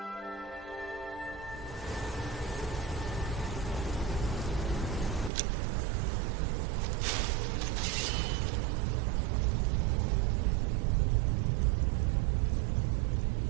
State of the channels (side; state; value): left; drops out; at 5.3 s